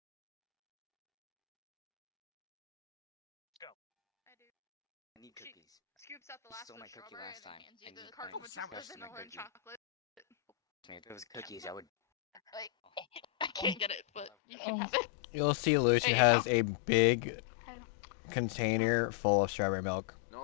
I need cookies. Scoops out the last Stole my cookie last time. I need carton my with rest of my vanilla and cookie. chocolate. If it was cookies, I would. I can't get it, but you can have it. You'll see Lucian There you has a big container full of strawberry milk.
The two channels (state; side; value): drops out; right; at 14.3 s